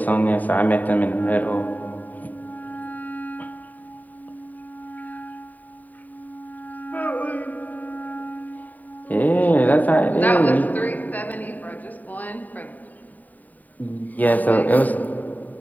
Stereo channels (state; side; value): late; right; 0.081 ms